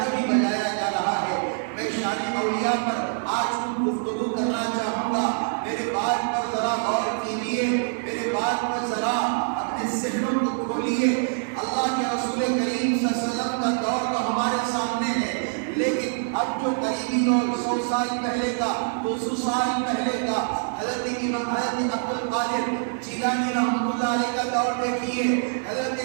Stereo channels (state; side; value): silent; left; digital silence